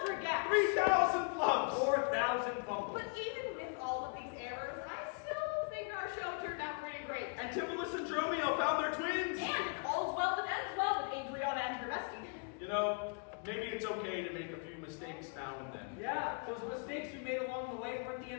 gaps. 3,000 flubs. 4,000 fumbles. But even with all of these errors, I still think our show turned out pretty great. Antipholus and Dromio found their twins. And if all's well that ends well with Adriana and her bestie. You know, maybe it's okay to make a few mistakes now and then. Yeah, those mistakes we made along the way weren't the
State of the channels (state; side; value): quieter; right; 38.3 dB